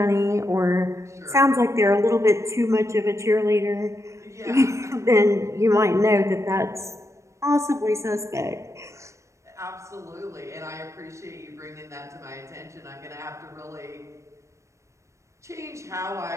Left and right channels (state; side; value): late; left; 0.15 ms